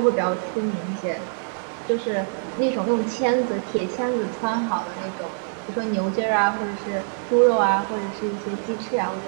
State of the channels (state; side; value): silent; left; 62 dB below the other